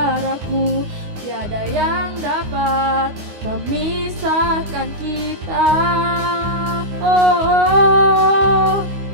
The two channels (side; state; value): left; late; 9.6 ms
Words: tiada yang dapat memisahkan kita. Oh,